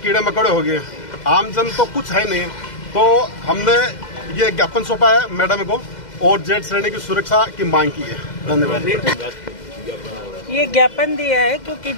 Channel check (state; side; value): late; right; 2.0 ms